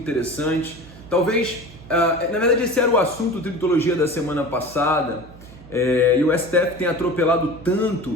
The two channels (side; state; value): right; noise; hum, 19 dB below the sound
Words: Talvez, na verdade, esse era o assunto do Tributologia da semana passada, e o STF tem atropelado